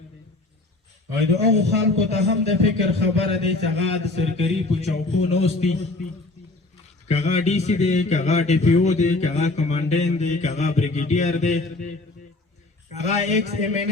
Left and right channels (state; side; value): quieter; right; 3.0 dB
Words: او د هغو خلکو ته هم د فکر خبره دی چې هغه د سرکري په چوکو ناست دي، که هغه ډي سي دی، که هغه ډي پي او دی، که هغه کمانډین دی، که هغه بریګیډیر دی، که هغه ایکس ایم این